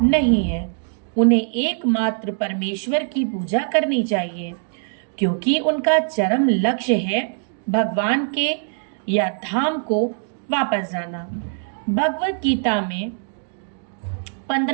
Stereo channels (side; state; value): left; silent; digital silence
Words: नहीं है। उन्हें एकमात्र परमेश्वर की पूजा करनी चाहिए, क्योंकि उनका चरम लक्ष्य है भगवान के या धाम को वापस जाना। भगवत गीता में